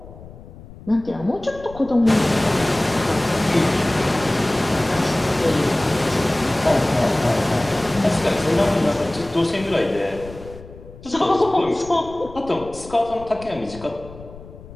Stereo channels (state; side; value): noise; left; rumble, 17 dB below the sound